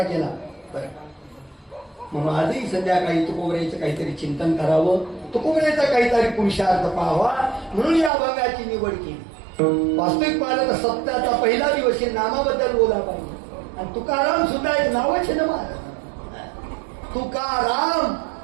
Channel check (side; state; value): left; drops out; at 8.1 s